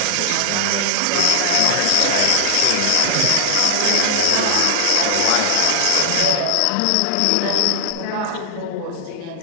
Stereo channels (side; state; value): both; different; correlation 0.00